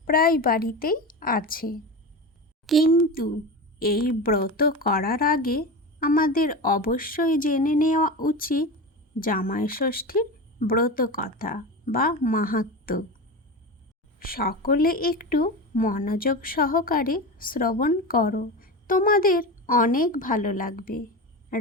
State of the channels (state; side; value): normal; both; correlation 0.24